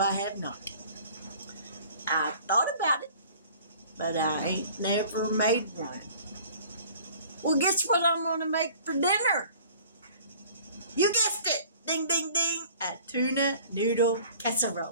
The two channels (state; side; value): inverted; both; correlation -0.50